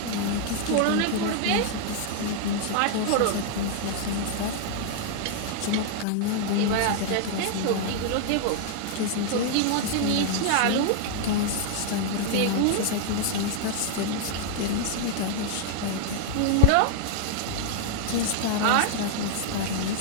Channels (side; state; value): both; different; correlation 0.00